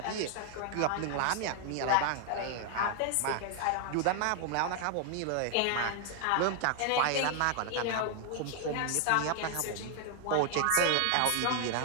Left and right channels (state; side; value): different; both; correlation 0.00